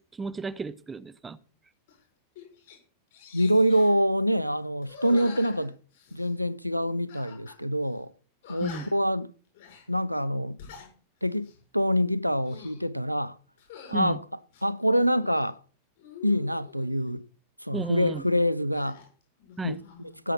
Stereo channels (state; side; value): inverted; both; correlation -0.89